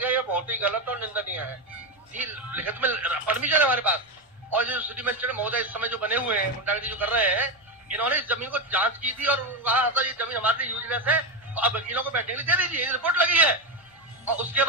ये बहुत ही गलत और निंदनीय है। जी, लिखित में परमिशन है हमारे पास। और जो सिटी मजिस्ट्रेट महोदय इस समय जो बने हुए हैं, गुंडागर्दी जो कर रहे हैं, इन्होंने इस जमीन को जांच की थी और कहा था ये जमीन हमारे लिए यूजलेस है, तो अब वकीलों को बैठने के लिए दे दीजिए, रिपोर्ट लगी है। और उसके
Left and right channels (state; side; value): normal; both; correlation 0.13